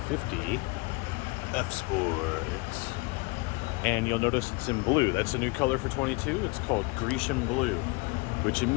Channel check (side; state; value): right; quieter; 27.5 dB